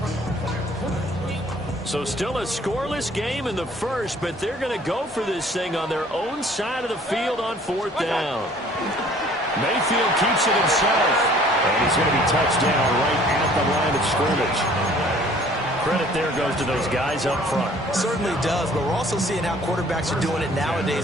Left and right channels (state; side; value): normal; both; correlation 0.54